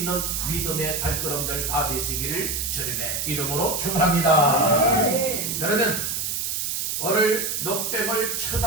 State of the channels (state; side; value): noise; right; hiss, 1 dB below the sound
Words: 믿음의 발걸음들 다 되시기를 주님의 이름으로 축원합니다. 그러면 오늘 놋뱀을